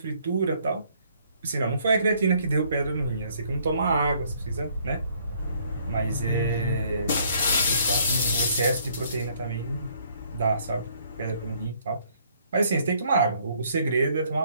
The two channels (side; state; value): both; inverted; correlation -0.64